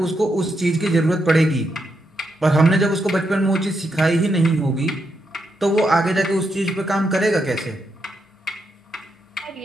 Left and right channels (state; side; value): normal; both; correlation 0.82